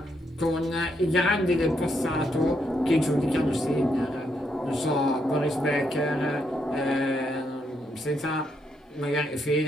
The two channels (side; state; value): both; normal; correlation 0.77